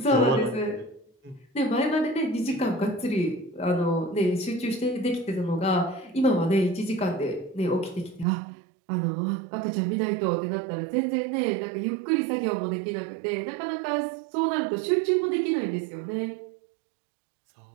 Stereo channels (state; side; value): drops out; left; at 8.2 s